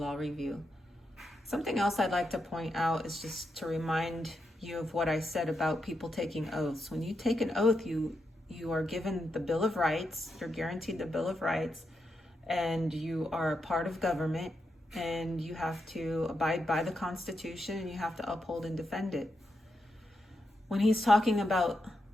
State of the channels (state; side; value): normal; both; correlation 0.84